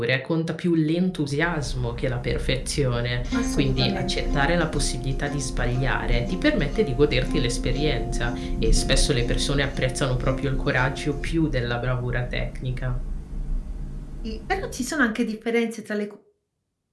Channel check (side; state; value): both; identical; correlation 1.00